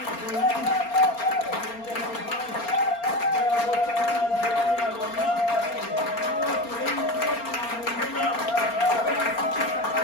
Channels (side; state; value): right; late; 4.3 ms